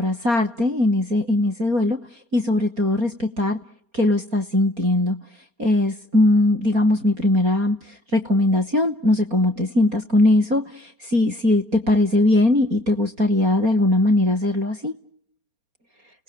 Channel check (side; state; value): left; late; 4.3 ms